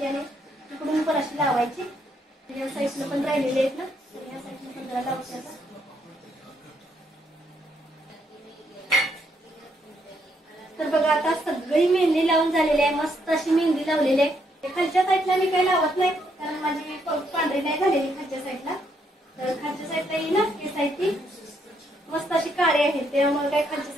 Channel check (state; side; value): normal; both; correlation 0.74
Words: आणि तिकडून पण अशी लावायची. या साईडला पण राहिलेले आहेत ना, तर या साईडला पण जरा लावते आता. तर बघा आता सगळी मेहंदी लावून झालेली आहे. मस्त अशी मेहंदी लावलेली आहे. खालच्या साईडला मी काही लावत नाही कारण माझी पांढरी नाही झालेली खालच्या साईडला. तर खालच्या साईडला ही ना केस आहे ती मस्त अशी काळी आहे, त्यामुळे काही खालच्या